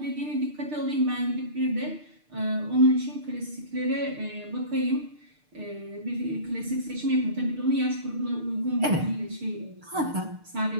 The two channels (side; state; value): left; late; 6.6 ms